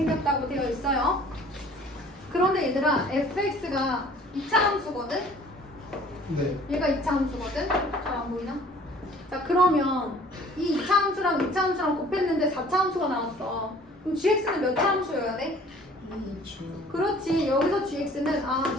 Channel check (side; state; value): both; normal; correlation 0.52